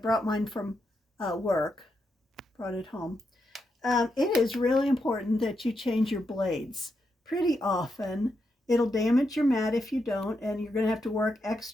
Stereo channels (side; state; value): both; normal; correlation 0.83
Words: mine from work, brought it home. It is really important that you change your blades pretty often. It'll damage your mat if you don't, and you're going to have to work